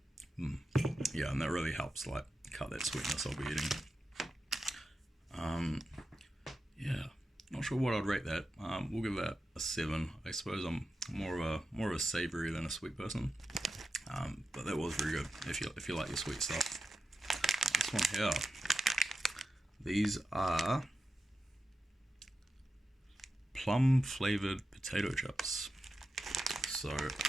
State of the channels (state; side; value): normal; both; correlation 0.90